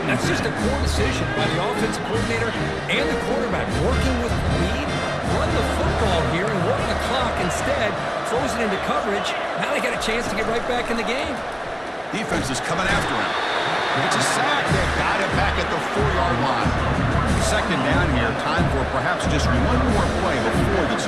That's just a poor decision by the offensive coordinator and the quarterback. Working with lead, run the football here and work the clock instead. Throws it into coverage. Now they got a chance to get right back in the game. Defense is coming after him. It's a sack. They got it back at the 4-yard line. 2nd down here. Time for perhaps just one more play before the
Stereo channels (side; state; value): both; identical; correlation 1.00